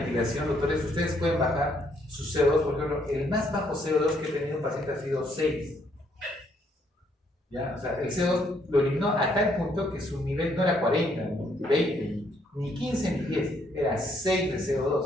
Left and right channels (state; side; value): normal; both; correlation 0.70